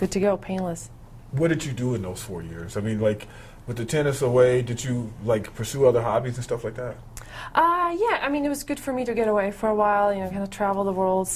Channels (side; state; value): both; identical; correlation 1.00